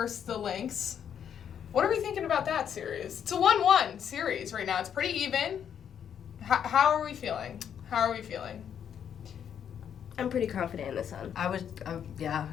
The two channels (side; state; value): right; quieter; 8.6 dB